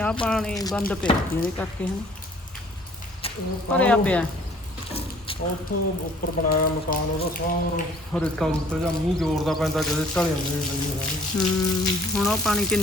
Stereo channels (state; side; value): normal; both; correlation 0.55